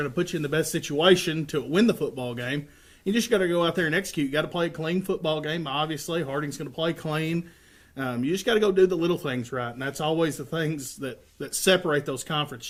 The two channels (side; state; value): both; identical; correlation 1.00